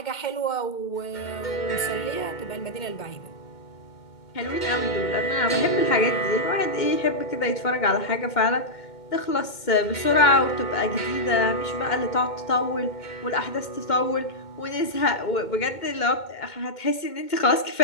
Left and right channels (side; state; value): right; late; 2.2 ms